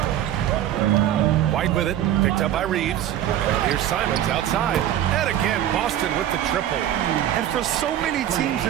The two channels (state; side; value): quieter; left; 11.6 dB